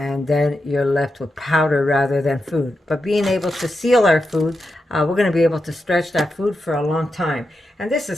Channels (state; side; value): normal; both; correlation 0.87